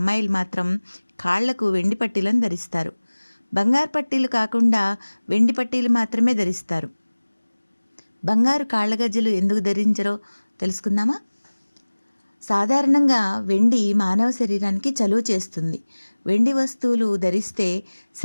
మాత్రం కాళ్లకు వెండి పట్టీలను ధరిస్తారు. బంగారు పట్టీలు కాకుండా వెండి పట్టీలు మాత్రమే ధరిస్తారు. బంగారు కాళ్ళ గజ్జలు ఎందుకు ధరించరో తెలుసుకుందామా? సాధారణంగా వెండి మానవ శరీరానికి చలువ చేస్తుంది. వెండి వస్తువులు ధరిస్తే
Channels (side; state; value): both; inverted; correlation -1.00